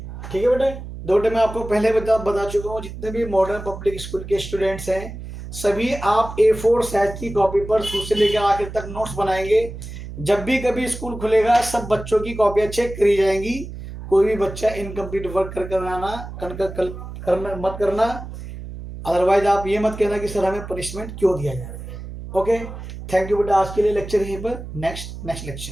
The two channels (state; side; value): noise; right; hum, 11 dB below the sound